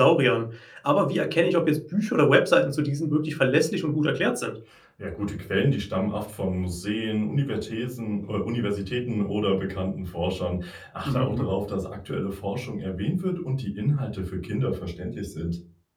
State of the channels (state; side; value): identical; both; correlation 1.00